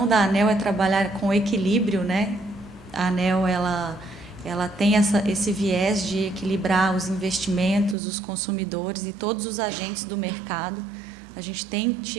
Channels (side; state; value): left; drops out; at 8.0 s